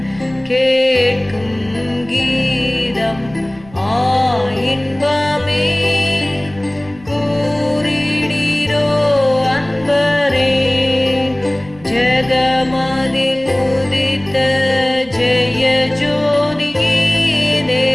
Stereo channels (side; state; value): right; noise; rumble, 23 dB below the sound